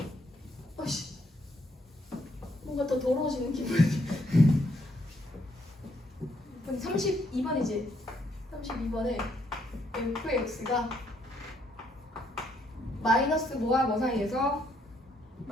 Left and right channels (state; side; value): normal; both; correlation 0.72